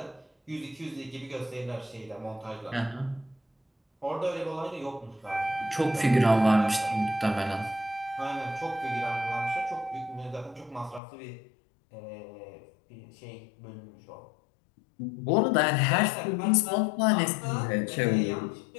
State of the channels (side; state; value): right; drops out; at 11.0 s